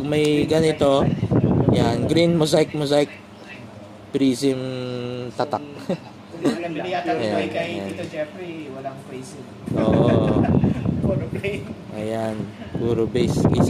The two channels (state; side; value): identical; both; correlation 1.00